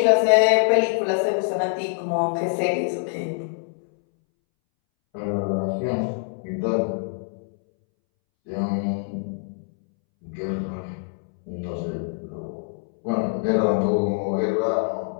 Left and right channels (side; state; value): right; silent; 62 dB below the other